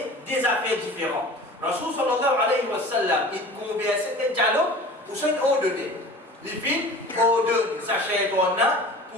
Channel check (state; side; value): normal; both; correlation 0.41